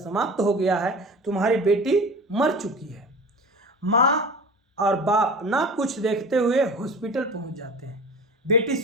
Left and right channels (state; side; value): normal; both; correlation 0.36